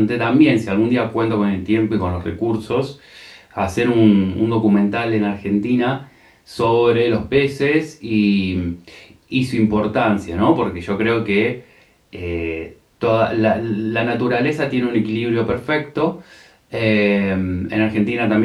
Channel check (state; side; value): identical; both; correlation 1.00